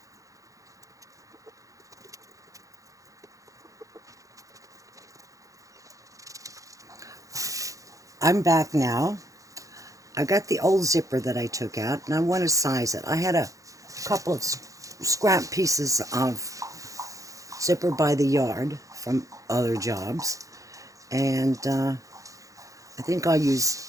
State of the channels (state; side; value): late; left; 0.16 ms